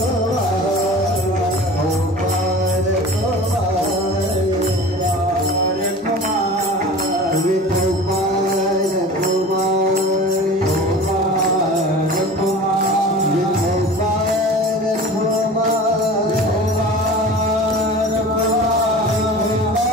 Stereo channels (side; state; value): both; normal; correlation 0.38